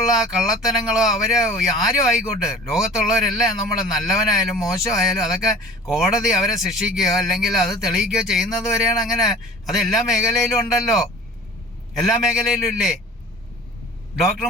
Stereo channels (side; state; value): both; normal; correlation 0.43